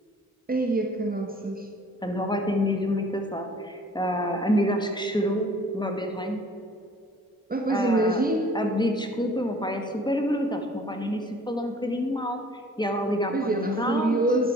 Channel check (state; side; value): normal; both; correlation 0.53